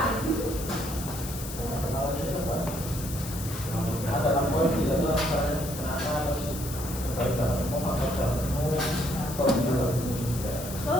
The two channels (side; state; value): left; noise; hiss, 10 dB below the sound